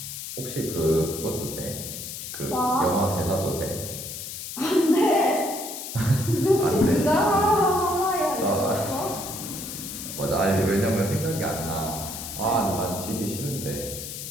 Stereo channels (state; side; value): noise; left; hiss, 8 dB below the sound